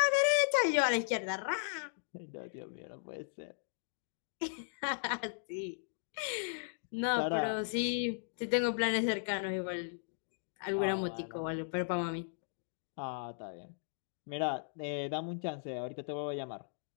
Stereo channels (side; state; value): right; silent; digital silence